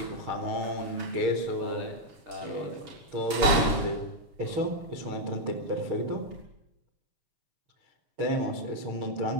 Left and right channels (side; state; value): left; late; 7.2 ms